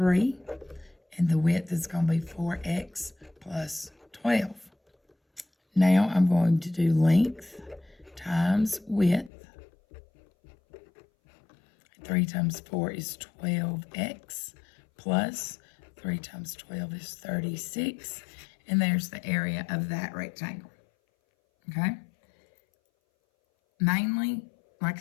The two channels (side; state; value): right; drops out; at 9.3 s